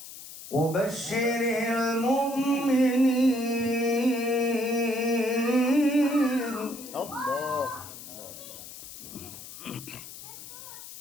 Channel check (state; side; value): noise; left; hiss, 14 dB below the sound